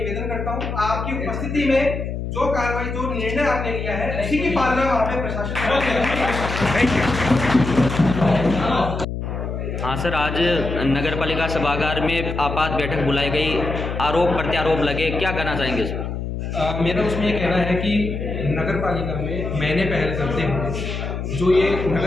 करता हूँ आपकी उपस्थिति में जो कार्रवाई जो निर्णय आपने लिया है उसी की पालना वहाँ पे प्रशासन। हाँ सर, आज नगर पालिका सभागार में आपात बैठक बुलाई गई, आरोप प्रत्यारोप लगे, क्या कहना चाहेंगे सर? मेरा उसमें ये कहना है कि नगर पालिका में मैंने पहल करते हुए जो ये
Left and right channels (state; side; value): noise; left; hum, 5 dB below the sound